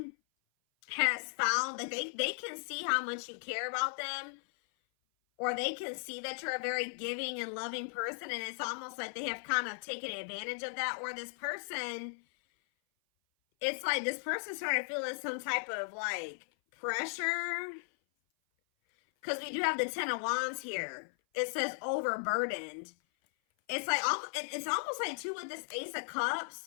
has found that they can see how much you care about them, or they can see that you're a very giving and loving person, and it's almost like they have kind of taken advantage of that. Or this person, it's like this person started feeling some type of like pressure, because we do have the Ten of Wands here. It says overburdened. It's like, it's almost like too with this Ace of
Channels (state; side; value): silent; right; 54 dB below the other